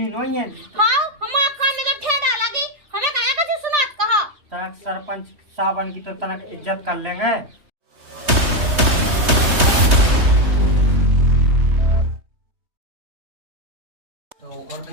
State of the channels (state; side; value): late; left; 3.2 ms